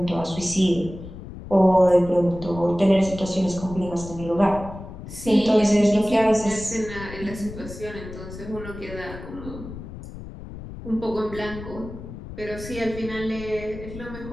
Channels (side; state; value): left; noise; rumble, 12 dB below the sound